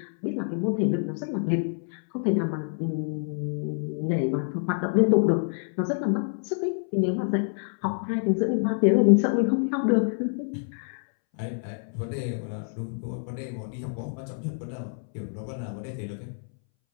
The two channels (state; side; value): silent; right; 60 dB below the other